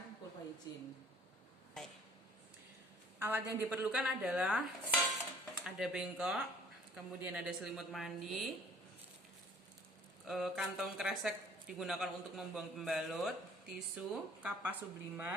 vulva higien. Alat yang diperlukan adalah ada bengkok, kemudian ada selimut mandi, kantong kresek digunakan untuk membuang pembalut, tisu, kapas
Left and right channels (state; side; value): normal; both; correlation 0.53